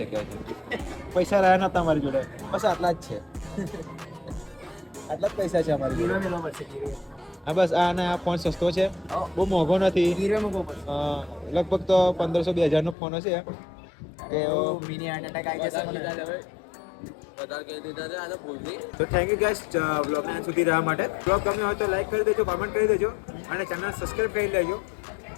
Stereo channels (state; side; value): drops out; right; at 13.0 s